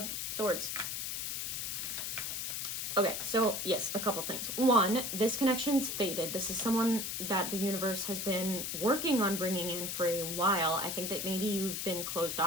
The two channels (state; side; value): noise; left; hiss, 3 dB below the sound